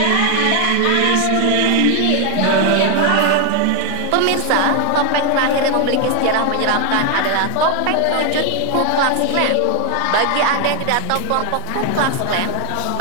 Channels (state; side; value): different; both; correlation 0.00